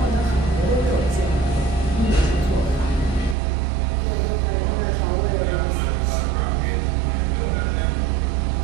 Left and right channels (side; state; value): left; drops out; at 3.4 s